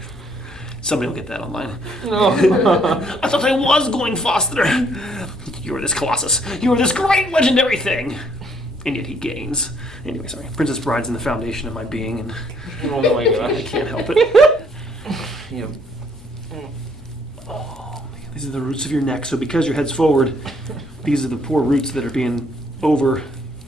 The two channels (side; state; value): both; normal; correlation 0.66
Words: Somebody will get that online. No. I thought I was going faster. You are this colossus. You are this great legendary thing. And yet he gains. Anyway, sorry. Princess Bride's in the foundation of my being, and Oh my I god. can't help it. Yep. Oh, man. These are the roots of your neck. So because your head's forward, these are the poor roots that are being